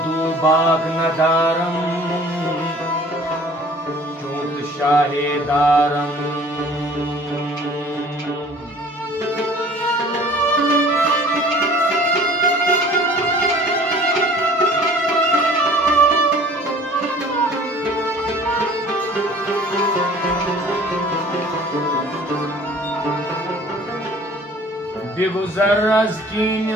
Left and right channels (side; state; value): both; normal; correlation 0.49